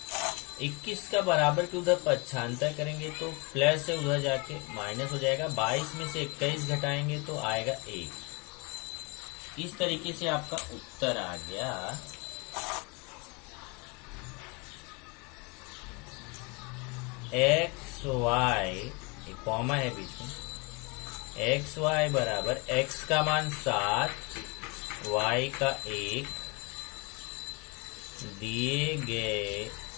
21 का बराबर के उधर पक्षांतर करेंगे तो प्लस है, उधर जाके माइनस हो जाएगा। 22 में से 21 घटाएंगे तो आएगा 1। इस तरीके से आपका उत्तर आ गया। एक्स वाई, एक कॉमा है बीच में, एक्स वाई बराबर x का मान 7, y का 1 दिए गए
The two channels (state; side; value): quieter; right; 30.0 dB